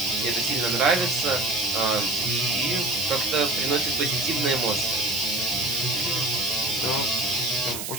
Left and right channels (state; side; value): noise; right; hiss, 6 dB below the sound